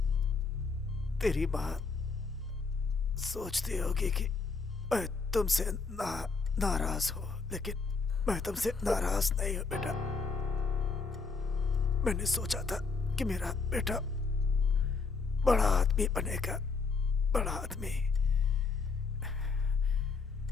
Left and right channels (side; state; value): right; quieter; 4.6 dB